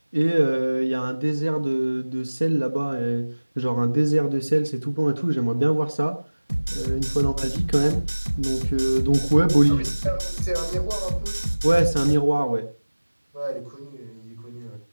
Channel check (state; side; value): inverted; both; correlation -1.00